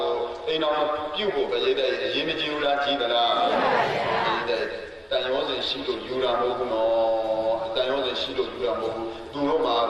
ိုအိမ်တော်ပြုဖို့ပြည့်တဲ့အရေးမကြီးဘူးလားကြီးသလားကြီးတဲ့တန်ရောစဉ်ရှိလို့ယူတာမဟုတ်ဘူးနော်တန်ရောစဉ်ရှိလို့ယူတာမဟုတ်ဘူးသူတို့မှာ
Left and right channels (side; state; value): both; identical; correlation 1.00